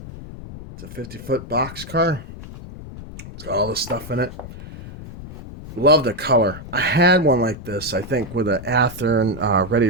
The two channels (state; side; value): noise; left; rumble, 13 dB below the sound